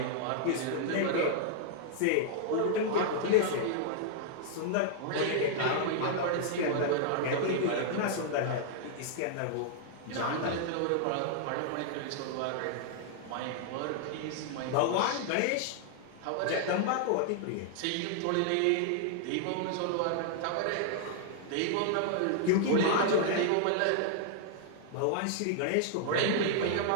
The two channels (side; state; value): both; different; correlation -0.01